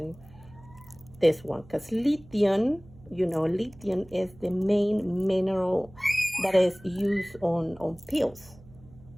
this one, because lithium is the main mineral that is used on pills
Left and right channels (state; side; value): noise; right; hum, 22 dB below the sound